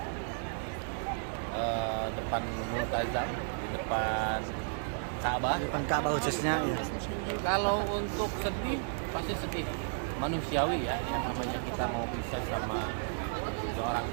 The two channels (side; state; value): left; silent; digital silence